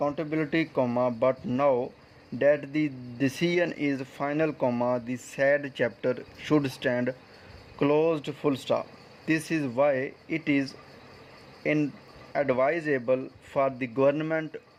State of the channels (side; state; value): both; identical; correlation 1.00